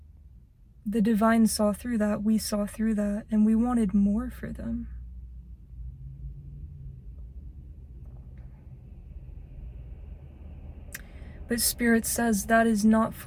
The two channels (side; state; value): both; identical; correlation 1.00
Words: The divine saw through that, we saw through that, and we wanted more for them. But Spirit says that is not